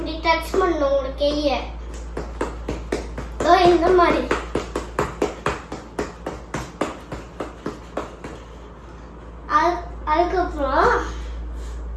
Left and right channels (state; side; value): identical; both; correlation 1.00